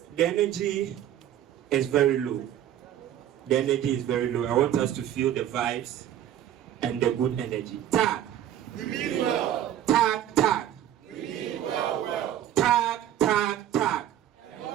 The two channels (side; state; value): left; quieter; 11.4 dB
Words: The energy is very low. The energy is very low. I want us to feel the vibes and the good energy. Tag. We mean well. Tag, tag. We mean well. Tag, tag, tag.